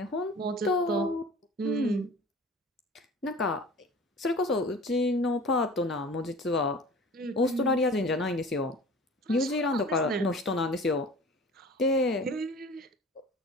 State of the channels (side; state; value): both; normal; correlation 0.42